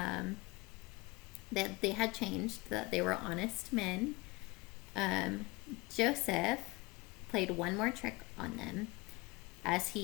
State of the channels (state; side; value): quieter; right; 23.8 dB